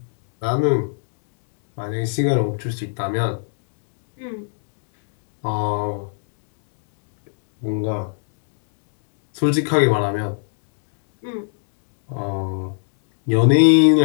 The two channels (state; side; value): silent; right; 63 dB below the other